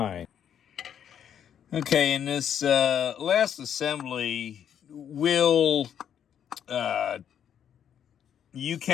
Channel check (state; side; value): quieter; right; 9.0 dB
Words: Okay, in this last assembly, you